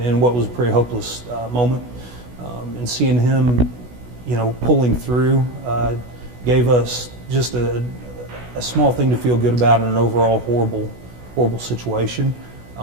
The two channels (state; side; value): late; left; 16 ms